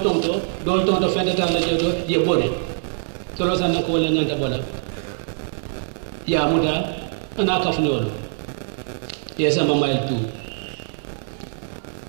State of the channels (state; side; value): silent; left; 63 dB below the other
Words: tonto fentata la jedo ye bone to lo sanna ko wala nyanta bola ya muta ana ka fnolo ye sama mail tu